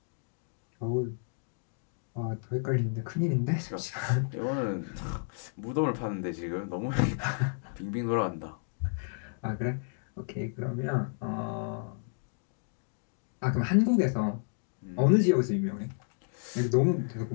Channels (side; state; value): right; silent; digital silence